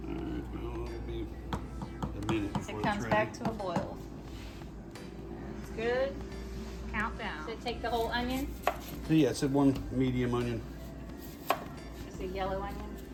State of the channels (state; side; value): identical; both; correlation 1.00